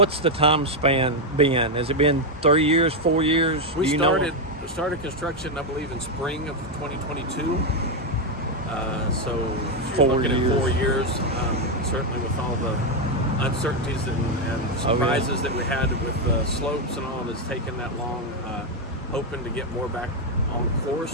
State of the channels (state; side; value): normal; both; correlation 0.04